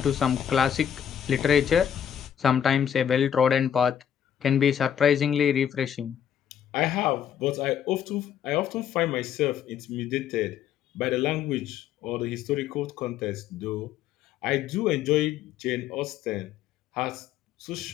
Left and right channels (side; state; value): right; quieter; 9.2 dB